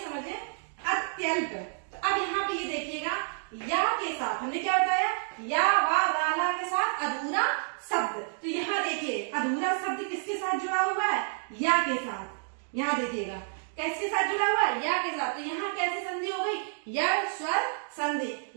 अत्यल्प, तो अब यहाँ पे ये देखिएगा, या के साथ हमने क्या बताया, या वा रा ला के साथ अधूरा शब्द। तो यहाँ देखिए अधूरा शब्द किसके साथ जुड़ा हुआ है, या के साथ। यहाँ देखिएगा किसके साथ जुड़ा हुआ है, या के साथ। तो यहाँ कैसी संधि हो गई, यह स्वर संधि।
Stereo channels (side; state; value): left; silent; digital silence